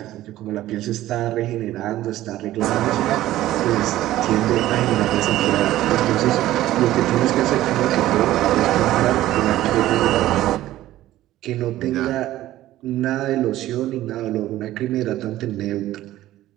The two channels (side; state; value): left; quieter; 14.8 dB